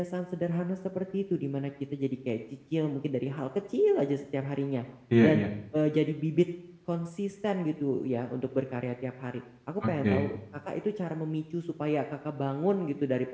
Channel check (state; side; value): identical; both; correlation 1.00